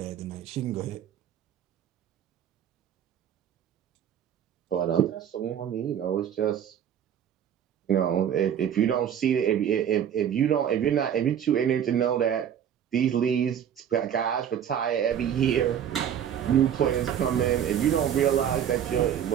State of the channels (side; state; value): left; quieter; 9.3 dB